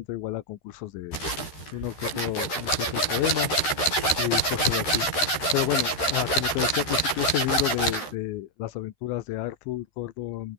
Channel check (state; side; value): late; right; 13 ms